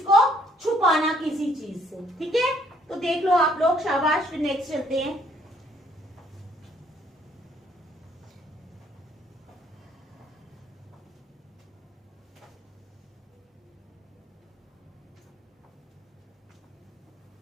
को छुपाना किसी चीज से। ठीक है, तो देख लो आप लोग, शाबाश। नेक्स्ट चलते हैं।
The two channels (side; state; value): both; normal; correlation 0.65